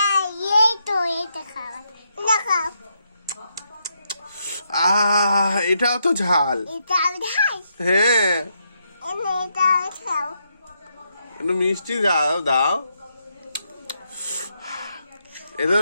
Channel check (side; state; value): both; inverted; correlation -0.80